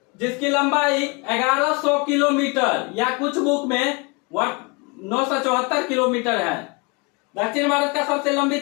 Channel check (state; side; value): quieter; right; 29.1 dB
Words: जिसकी लंबाई 1100 किलोमीटर या कुछ बुक में 974 किलोमीटर है। दक्षिण भारत का सबसे लंबी